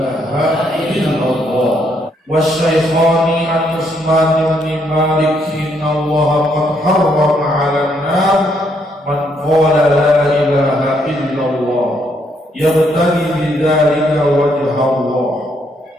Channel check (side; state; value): both; normal; correlation 0.73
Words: illallah. Wasyaikhani an Utsman bin Malik inna Allah qad harrama 'alan nar man qala la ilaha illallah yabtaghi bidzalika wajha Allah.